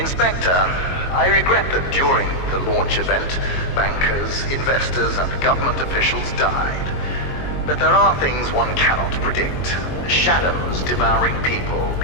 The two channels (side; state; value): right; late; 22 ms